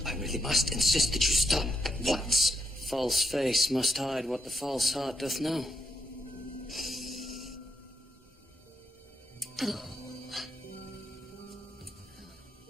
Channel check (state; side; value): normal; both; correlation 0.79